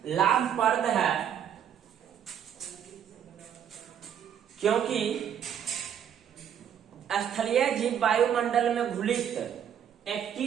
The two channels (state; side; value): quieter; left; 9.0 dB